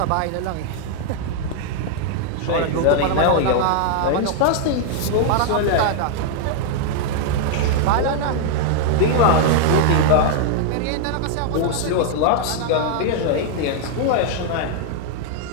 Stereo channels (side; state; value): both; different; correlation 0.00